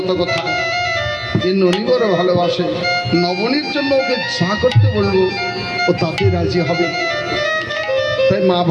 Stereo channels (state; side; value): identical; both; correlation 1.00